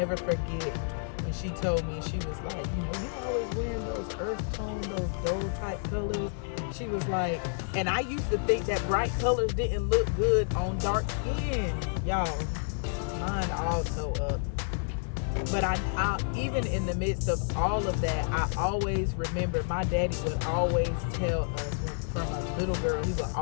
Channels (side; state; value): right; silent; digital silence